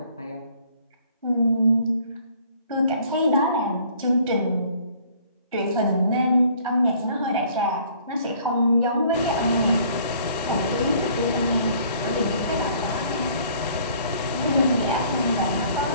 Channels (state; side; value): inverted; both; correlation -0.57